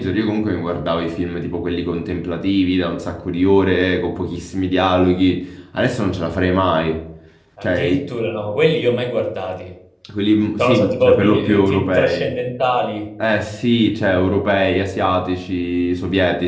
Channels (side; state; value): both; identical; correlation 1.00